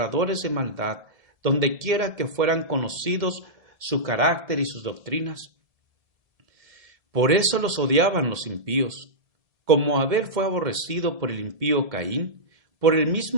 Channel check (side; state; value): left; late; 1.7 ms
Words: de maldad donde quiera que fueran conocidos su carácter y sus doctrinas. Por eso los odiaban los impíos, como Abel fue aborrecido por el impío Caín, por el